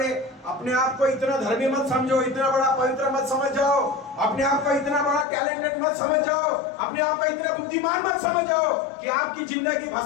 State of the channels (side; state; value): right; drops out; at 5.2 s